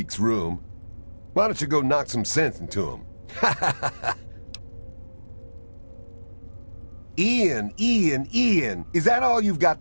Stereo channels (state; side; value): inverted; both; correlation -1.00